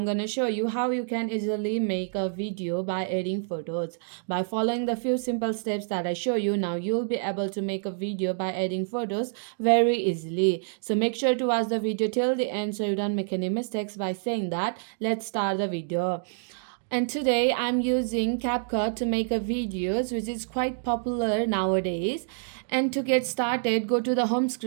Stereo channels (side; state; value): left; silent; digital silence